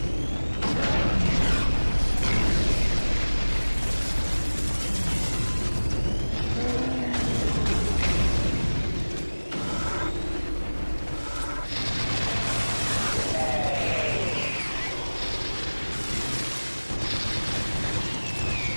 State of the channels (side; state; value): both; inverted; correlation -1.00